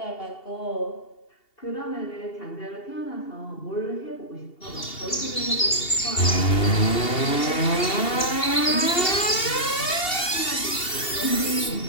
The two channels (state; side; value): late; right; 2.7 ms